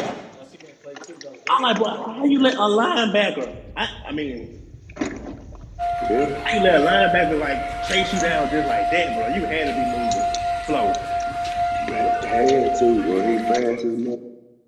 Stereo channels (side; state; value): both; identical; correlation 1.00